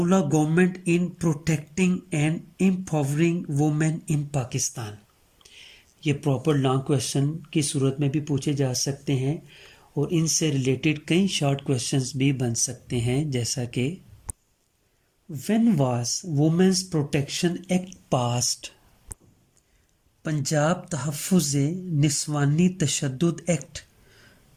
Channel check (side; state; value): both; identical; correlation 1.00